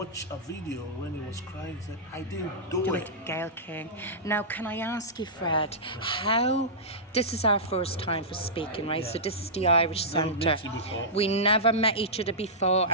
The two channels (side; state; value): both; normal; correlation -0.14